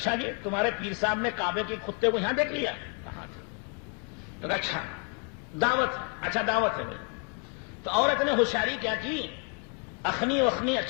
جی تمہارے پیر صاحب نے کعبے کے کتے کو یہاں دیکھ لیا؟ کہاں تھا؟ تو کہا اچھا دعوت، اچھا دعوت ہے بھائی۔ تو عورت نے ہوشیاری کیا کی، اخنی وخنی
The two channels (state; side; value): quieter; right; 39.0 dB